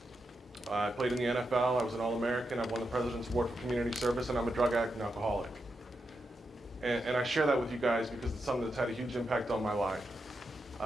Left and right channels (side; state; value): both; normal; correlation 0.86